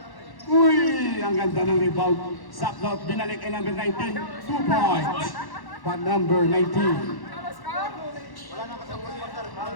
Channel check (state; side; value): late; right; 1.1 ms